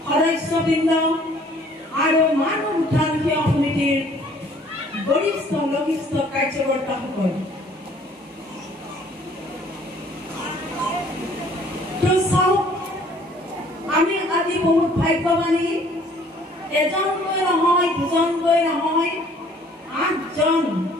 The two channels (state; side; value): normal; both; correlation 0.57